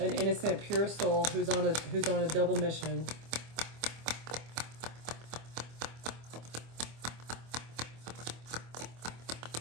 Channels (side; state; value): left; late; 25 ms